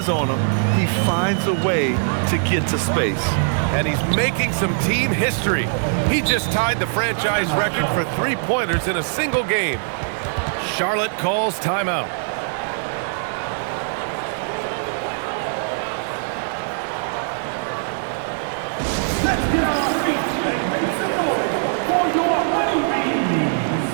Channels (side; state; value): left; silent; digital silence